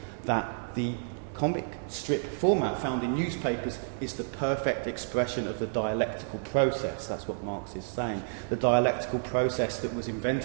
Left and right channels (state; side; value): silent; left; digital silence